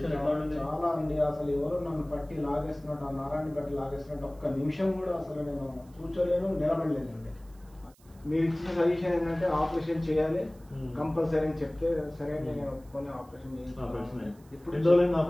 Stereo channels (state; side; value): noise; right; hiss, 30 dB below the sound